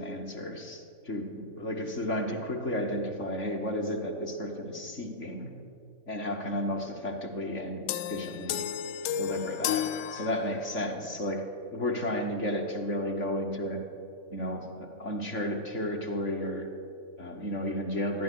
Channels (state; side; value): late; right; 3.5 ms